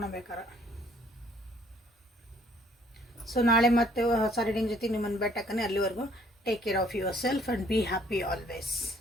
ಸೊ ನಾಳೆ ಮತ್ತೆ ಹೊಸ ರೀಡಿಂಗ್ ಜೊತೆಗೆ ನಿಮ್ಮನ್ನು ಭೇಟಿಯಾಗ್ತೀನಿ. ಅಲ್ಲಿವರೆಗೂ take care of yourself and be happy always.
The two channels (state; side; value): normal; both; correlation 0.61